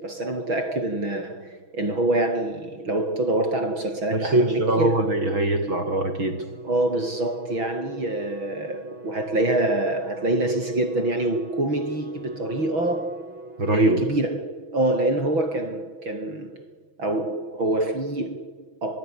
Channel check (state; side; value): late; left; 6.2 ms